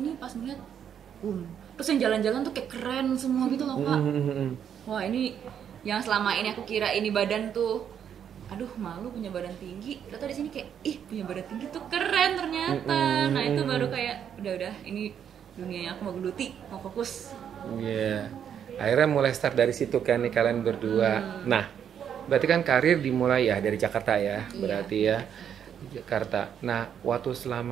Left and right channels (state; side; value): quieter; left; 8.6 dB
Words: pas ngeliat terus yang jalan-jalan tuh kayak keren semua gitu loh Kak. Wah ini yang selama ini aku kira ini badan tuh aduh malu punya badan tinggi, ternyata di sini kayak ih punya badan tinggi tuh keren ternyata. Nah itu baru kayak udah ini dunia yang aku mau geluti, mau fokus. Iya. Akhirnya mulai start dari situ kan nih kalian berdua. Nah, berarti kan karir dimulai ya dari Jakarta ya, berarti ya di Jakarta. Nah, waktu